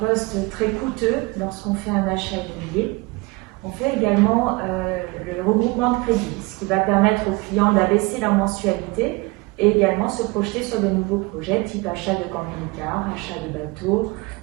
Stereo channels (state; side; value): quieter; left; 24.3 dB